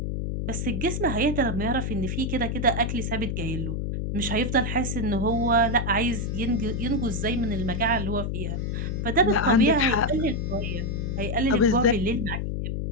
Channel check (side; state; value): left; noise; hum, 2 dB below the sound